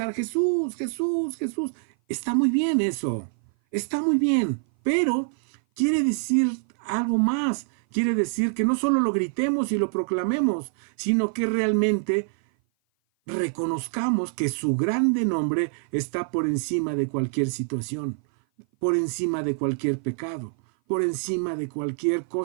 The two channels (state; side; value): silent; left; 57 dB below the other